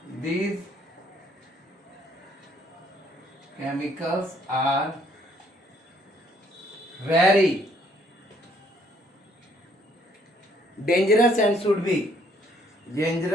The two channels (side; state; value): both; normal; correlation 0.65